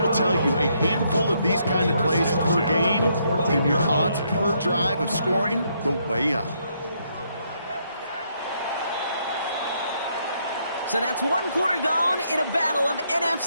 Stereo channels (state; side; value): inverted; both; correlation -0.74